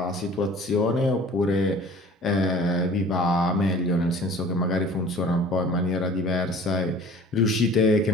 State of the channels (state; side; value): normal; both; correlation 0.46